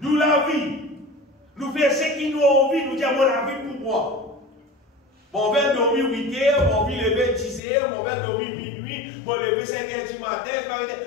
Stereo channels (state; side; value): drops out; right; at 7.6 s